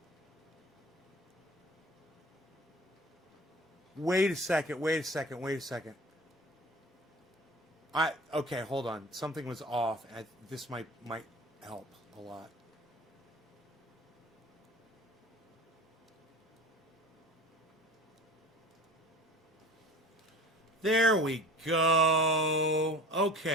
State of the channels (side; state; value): both; normal; correlation 0.41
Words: Wait a second. Okay, hold on. Something was off. This might help a lot. There we go.